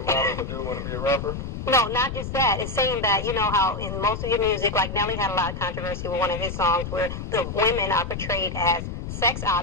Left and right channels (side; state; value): left; noise; rumble, 6 dB below the sound